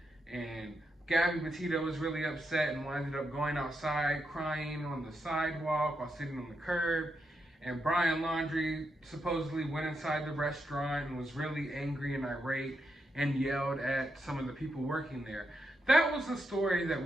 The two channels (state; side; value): normal; both; correlation 0.83